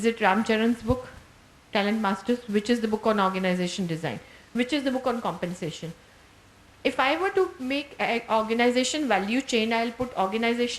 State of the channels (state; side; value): identical; both; correlation 1.00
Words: it Ram Charan's book, Talent Masters? Which is the book on organization design? Which is the book on compensation? If I were to make an organization value chain, I'll put